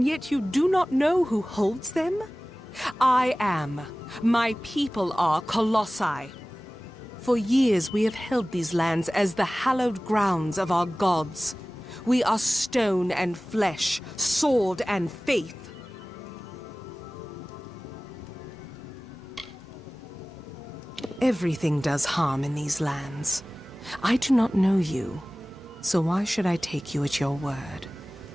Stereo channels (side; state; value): both; normal; correlation 0.98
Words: yet you do not know who holds them? I am. My people are Colossi. For years we have held these lands as the hallowed grounds of our gods. We are stone and flesh, sword and faith. Everything does harm in these lands. I do not know you, so why should I take you at your word?